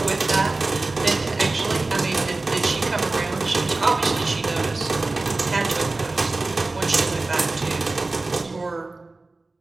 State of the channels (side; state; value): left; quieter; 3.3 dB